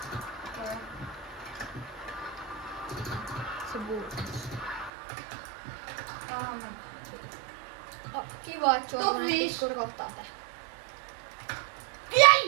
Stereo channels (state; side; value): drops out; left; at 4.9 s